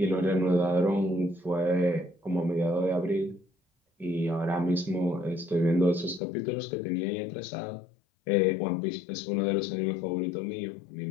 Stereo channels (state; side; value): drops out; right; at 6.2 s